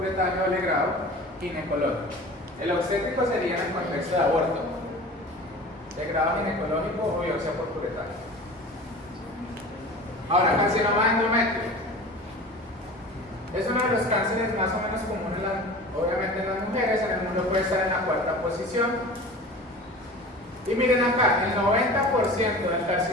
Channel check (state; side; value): normal; both; correlation 0.38